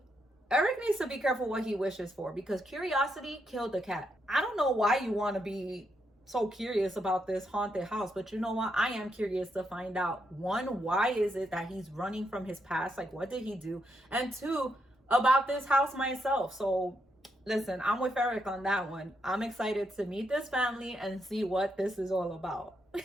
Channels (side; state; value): both; normal; correlation 0.80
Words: Eric needs to be careful what he wishes for because curiosity killed the cat. I don't know why you want to be so curious about this haunted house, but you know what? I am curious to find out. One, why is it that he's running from his past? Like, what did he do? And two, about this house myself. So listen, I'm with Eric on that one. I'm excited to meet this family and see what this is all about.